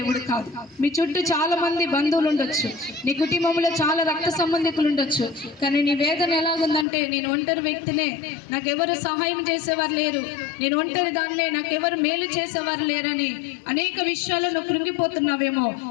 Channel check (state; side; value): drops out; right; at 6.9 s